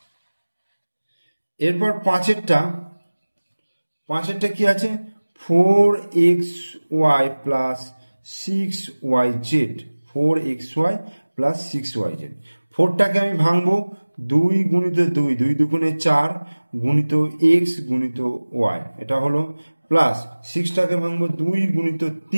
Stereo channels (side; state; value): both; inverted; correlation -1.00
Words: এরপর পাঁচেরটা কি আছে, 4xy plus 6yz, 4xy plus 6yz। 4টাকে আমি ভাঙবো 2 গুণিত 2, 2 দুগুণে 4 গুণিত x গুণিত y, এটা হলো, প্লাস 6টাকে ভাঙবো 2 গুণিত